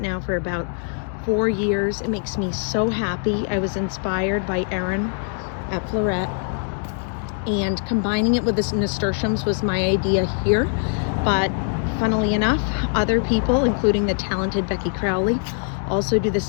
now for about 4 years. It makes me so happy. I was inspired by Erin at Florette, and combining it with the nasturtiums was my idea here, but funnily enough, other people, including the talented Becky Crowley, also do the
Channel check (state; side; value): silent; right; 59 dB below the other